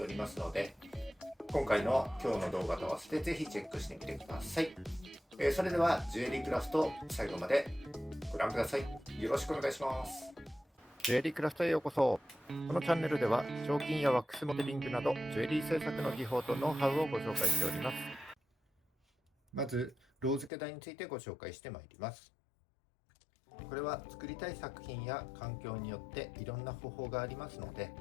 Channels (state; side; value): drops out; right; at 20.5 s